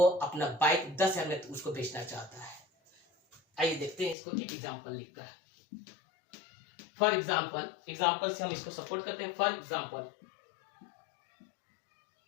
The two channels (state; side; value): drops out; right; at 4.2 s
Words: अपना बाइक 10,000 में उसको बेचना चाहता है। आइए देखते हैं इसको एक एग्जांपल लिखकर। फॉर एग्जांपल से हम इसको सपोर्ट करते हैं। For example,